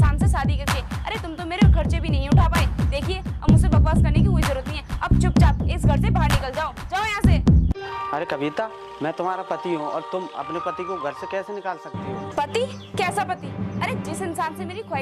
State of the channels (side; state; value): both; identical; correlation 1.00